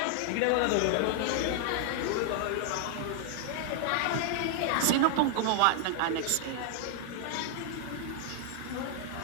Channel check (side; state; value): both; different; correlation 0.00